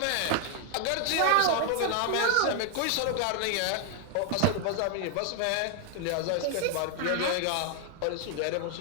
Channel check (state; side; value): different; both; correlation 0.00